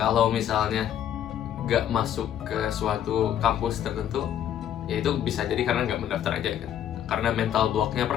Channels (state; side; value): quieter; right; 10.3 dB